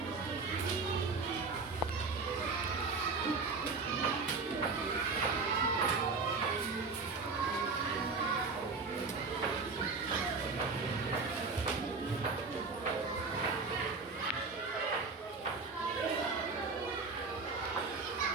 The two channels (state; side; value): quieter; left; 4.2 dB